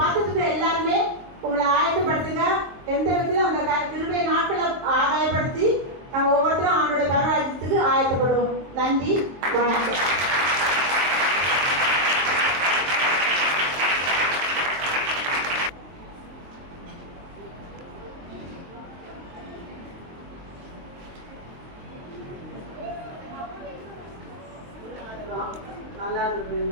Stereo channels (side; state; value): left; late; 23 ms